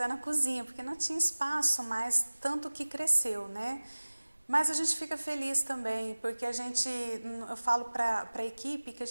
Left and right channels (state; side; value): inverted; both; correlation -1.00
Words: na cozinha, porque não tinha espaço mais, tanto que cresceu, né? Mas a gente fica feliz também, porque eu falo para a equipe que a